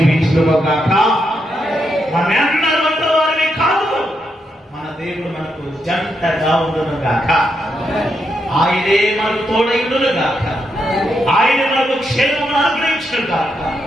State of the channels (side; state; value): both; normal; correlation 0.81